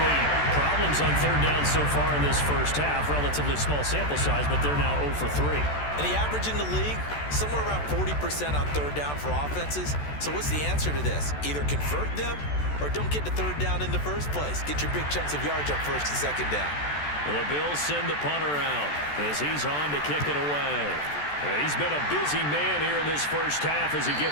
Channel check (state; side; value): late; right; 14 ms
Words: problems on third down so far in this first half. Relatively small sample size, but they're now 0 for 3. And the average in the league, somewhere around 40% on third down for offenses. So what's the answer to this? Either convert them or don't get the third down in the first place. Get your big chunks of yards up first and second down. The Bills send the punter out as he's on to kick it away. He's been a busy man here in this first half as he